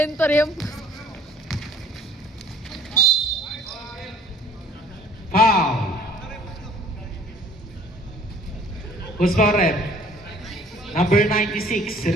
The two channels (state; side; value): normal; both; correlation 0.54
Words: yung... Foul. Who's foul rep? Number 96,